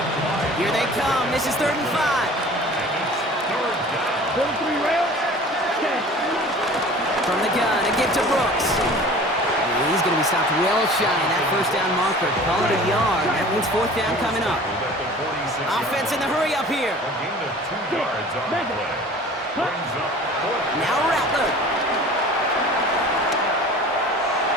Here they come. This is 3rd and 5. 43 rail. From the gun, a give to Brooks. And he's going to be stopped well shy of that first down marker. Call it a yard. That means 4th down coming up. Offense in the hurry up here. A gain of 2 yards on the play. Brings up 4th. Now Rattler.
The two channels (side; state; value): both; normal; correlation 0.44